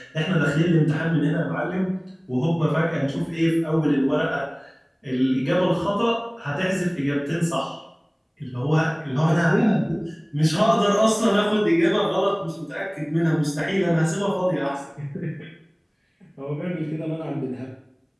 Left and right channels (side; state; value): both; identical; correlation 1.00